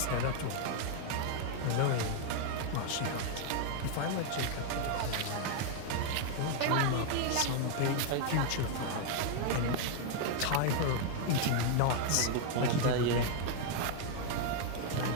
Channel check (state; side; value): different; both; correlation 0.00